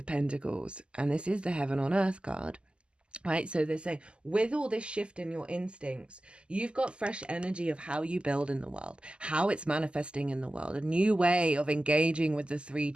Pentacles. And this is the Heaven on Earth card. Right, so they're saying with all this shift in your instincts, you've got fresh energy of how you build in the world, how it's manifesting in the world, a new way of engaging with the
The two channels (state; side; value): late; left; 0.052 ms